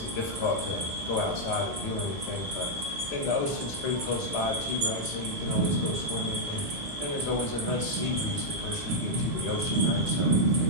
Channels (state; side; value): normal; both; correlation -0.04